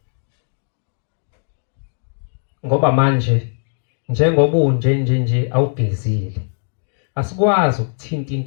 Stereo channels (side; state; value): right; silent; 66 dB below the other